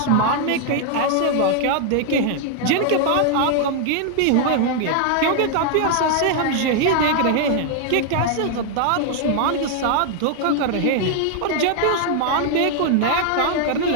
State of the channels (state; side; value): different; both; correlation 0.00